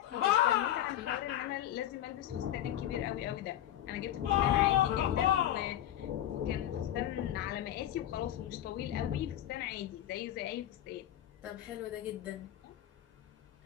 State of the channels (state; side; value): quieter; right; 12.0 dB